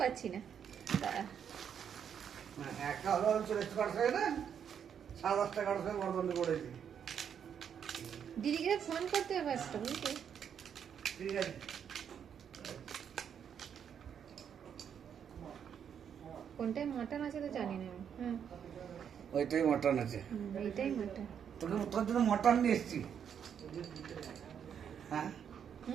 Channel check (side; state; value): left; quieter; 8.1 dB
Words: পারছি না। দিদিকে ফোন করতে হবে একটা, বুঝলি? কোনটায় মাটন আছে তো জানি না। হ্যাঁ ওইটাই মটন আছে, এইটাই মাটন। তোকে তোর জন্য মটন নিয়ে এসছি। হ্যাঁ